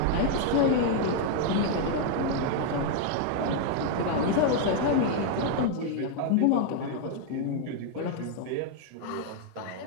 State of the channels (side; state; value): both; different; correlation 0.00